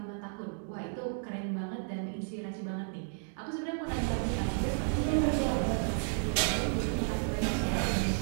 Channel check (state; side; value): silent; left; digital silence